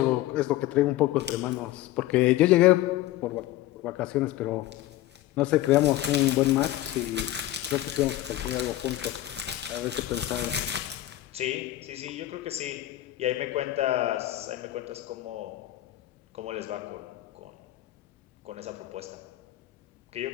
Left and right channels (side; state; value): right; quieter; 14.9 dB